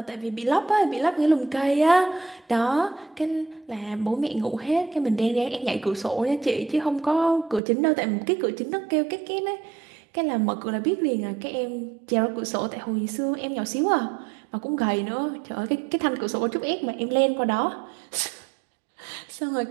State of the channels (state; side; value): drops out; left; at 7.6 s